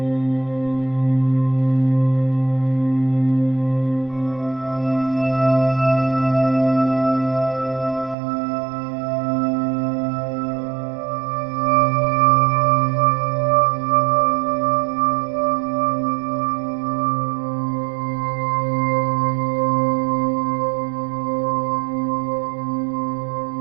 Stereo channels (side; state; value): left; drops out; at 8.2 s